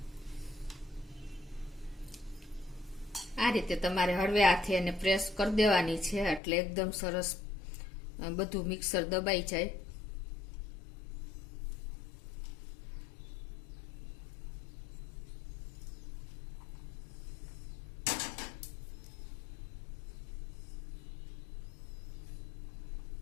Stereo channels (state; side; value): drops out; right; at 6.4 s